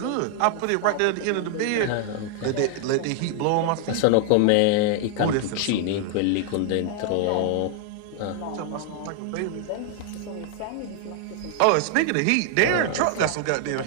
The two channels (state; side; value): different; both; correlation 0.00